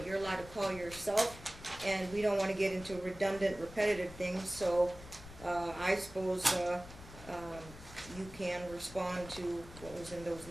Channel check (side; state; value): left; noise; rumble, 16 dB below the sound